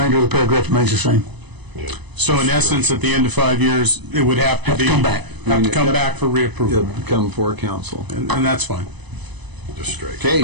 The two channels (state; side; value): late; left; 0.99 ms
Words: of the paragraph remains the same. So in essence, at the end of 5 years, it would have to Have to be... come back. Have to come back for reapproval, It'll come before council. and that's fine. Just straight.